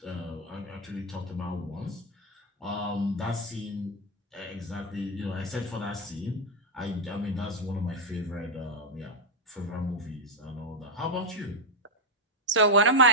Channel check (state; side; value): normal; both; correlation 0.03